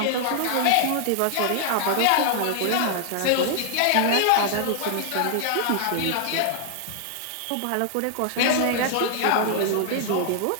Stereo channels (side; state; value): both; different; correlation -0.01